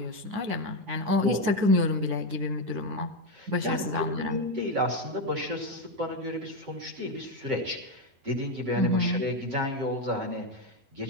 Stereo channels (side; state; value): left; late; 11 ms